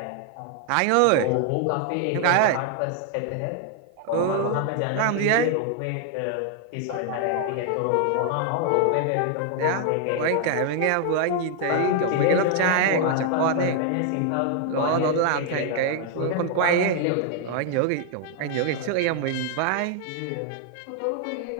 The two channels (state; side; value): different; both; correlation 0.00